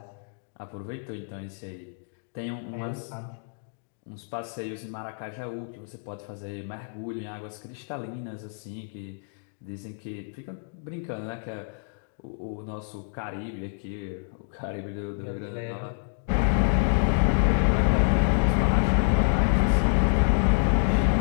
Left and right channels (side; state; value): right; silent; digital silence